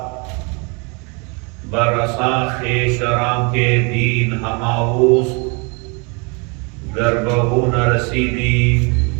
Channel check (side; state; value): left; quieter; 31.8 dB